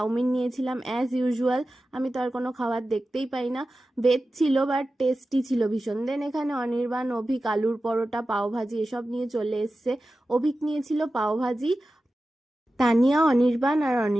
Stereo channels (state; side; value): normal; both; correlation 0.94